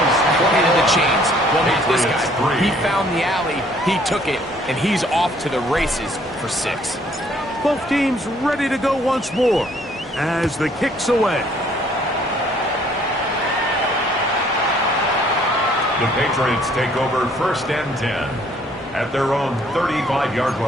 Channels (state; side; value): normal; both; correlation 0.61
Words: ahead of the chains. Well, not this guy. He found the alley, he took it, and he's off to the races for 6. Both teams ready to go once more as the kick's away. The Patriots take over 1st and 10 at their own 35-yard